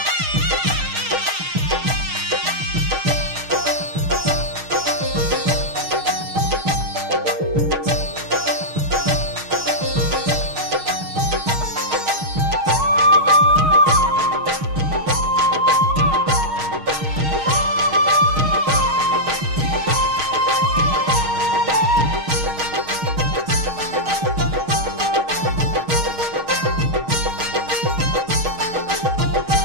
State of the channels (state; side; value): late; left; 6.4 ms